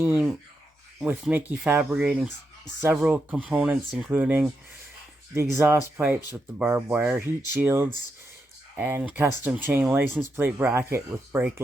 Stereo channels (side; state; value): both; normal; correlation 0.84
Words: with Mickey fabricating several components, including the exhaust pipes with the barbed wire, heat shields, and custom chain license plate bracket with brake